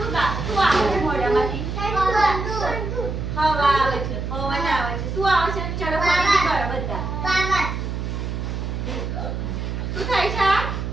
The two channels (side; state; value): right; noise; hum, 4 dB below the sound